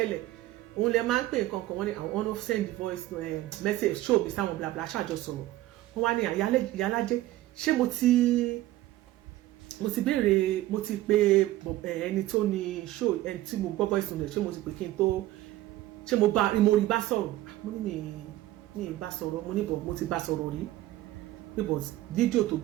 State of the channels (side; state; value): left; quieter; 15.7 dB